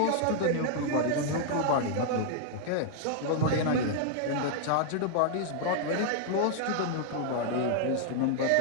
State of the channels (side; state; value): both; different; correlation -0.01